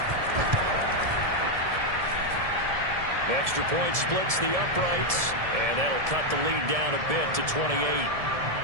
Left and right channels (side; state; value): left; late; 1.7 ms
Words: Extra point splits the uprights, and that'll cut the lead down a bit to 28.